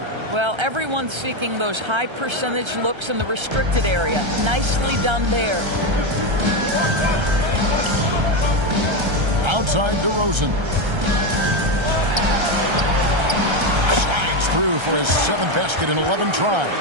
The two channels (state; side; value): late; left; 1.3 ms